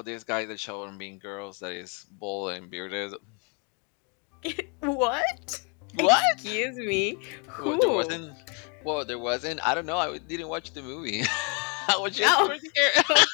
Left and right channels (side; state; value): right; quieter; 35.7 dB